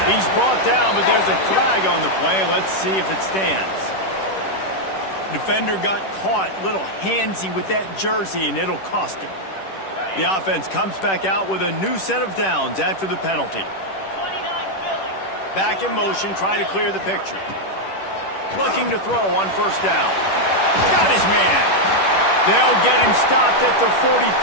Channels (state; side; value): late; right; 10 ms